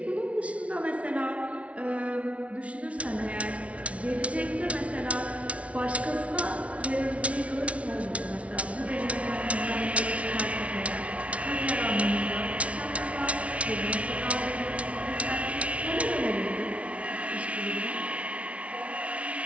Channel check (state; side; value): late; left; 0.064 ms